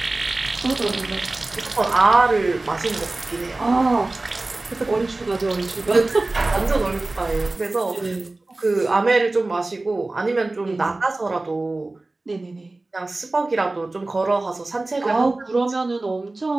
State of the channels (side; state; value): left; quieter; 3.0 dB